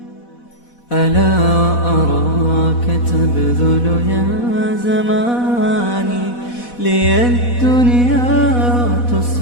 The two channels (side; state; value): right; late; 4.1 ms